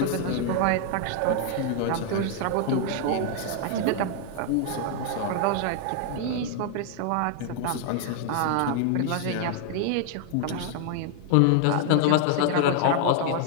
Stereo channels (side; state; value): both; different; correlation 0.00